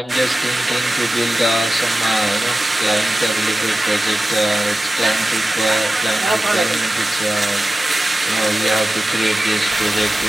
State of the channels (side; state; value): both; normal; correlation 0.95